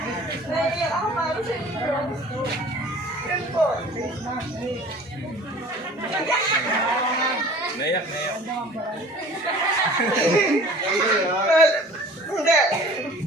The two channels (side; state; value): both; normal; correlation 0.46